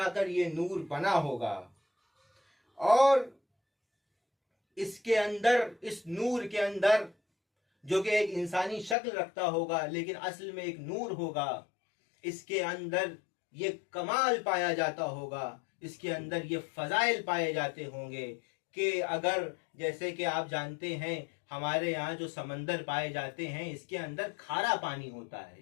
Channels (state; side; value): drops out; right; at 9.0 s